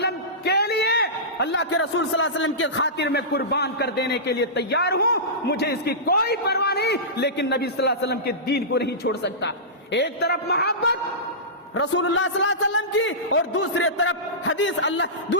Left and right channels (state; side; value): normal; both; correlation -0.19